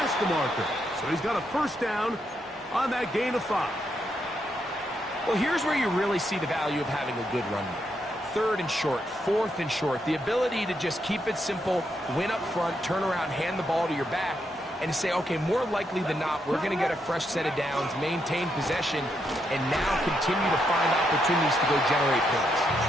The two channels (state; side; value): normal; both; correlation 0.80